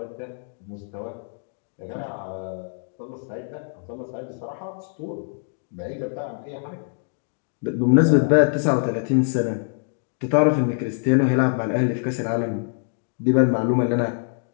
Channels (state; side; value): silent; right; digital silence